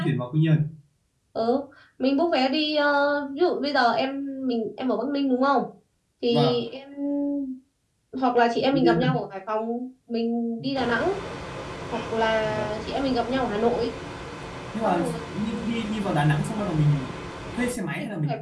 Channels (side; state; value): both; identical; correlation 1.00